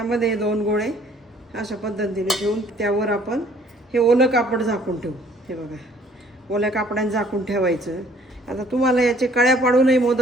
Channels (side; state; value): both; normal; correlation 0.59